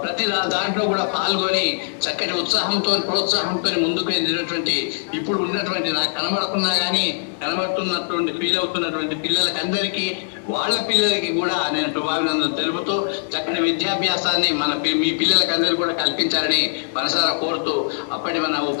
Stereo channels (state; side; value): silent; right; digital silence